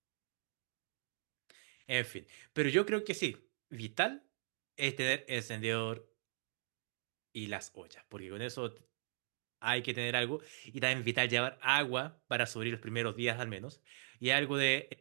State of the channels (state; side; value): silent; left; digital silence